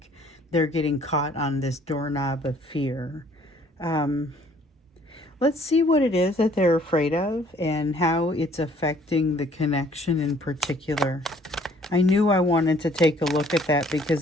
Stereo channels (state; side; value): normal; both; correlation 0.59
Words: they're getting caught on this doorknob of fear. Let's see what it is that they're afraid of and how it's affecting the connection in particular. I knew I wanted to take a look at that